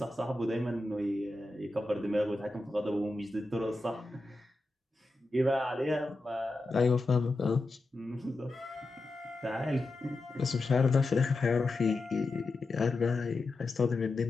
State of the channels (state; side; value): quieter; right; 3.0 dB